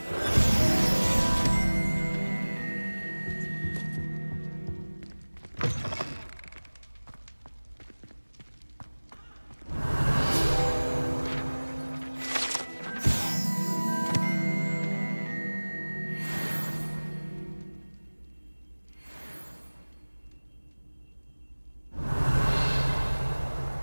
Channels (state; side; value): inverted; both; correlation -1.00